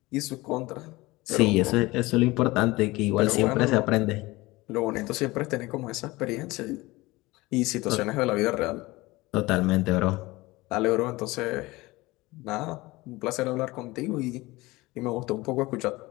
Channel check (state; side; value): quieter; right; 21.0 dB